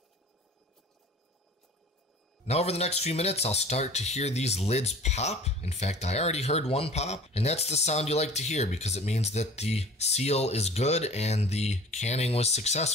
Now over the next few minutes, I'll start to hear these lids pop. In fact, I already heard one pop, and that's the sound you like to hear because it means that the seal is good and the canning was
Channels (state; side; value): normal; both; correlation 0.45